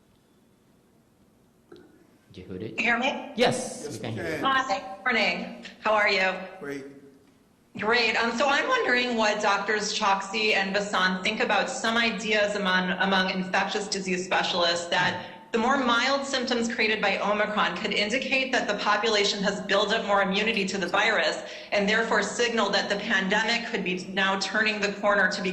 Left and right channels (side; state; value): both; identical; correlation 1.00